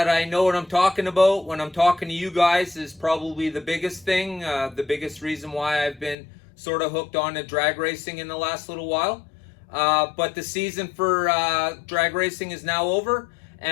I know what I'm talking about when I'm talking to you guys is probably the biggest thing, the biggest reason why I've been sort of hooked on to drag racing in the last little while. But the season for drag racing is now over,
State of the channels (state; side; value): drops out; right; at 6.2 s